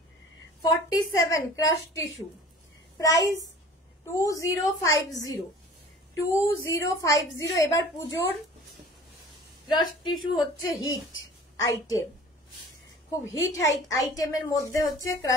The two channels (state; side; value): normal; both; correlation 0.45